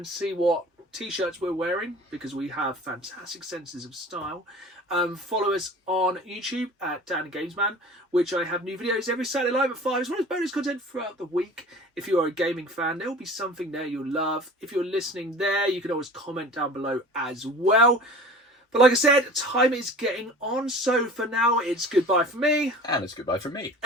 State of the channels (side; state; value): both; normal; correlation 0.41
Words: see what t-shirts we're wearing, because we have fantastic senses of style, follow us on YouTube at Dan Gamesman, which I have new videos every Saturday live at 5, as well as bonus content throughout the week. If you are a gaming fan, there will be something there you'll love. If you're listening there, you can always comment down below as well. But like I said, time is getting on, so for now, it's goodbye from me. And it's goodbye from me.